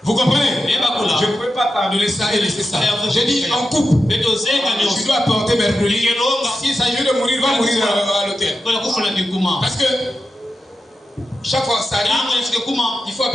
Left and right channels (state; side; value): normal; both; correlation 0.90